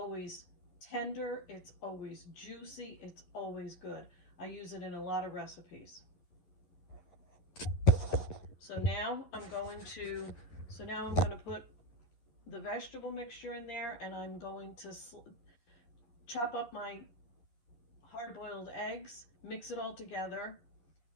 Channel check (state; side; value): late; right; 11 ms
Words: tender, it's always juicy, it's always good. I use it in a lot of recipes. So now I'm going to put the vegetable mixture in there, and I'm going to chop up my hard-boiled eggs, mix it all together,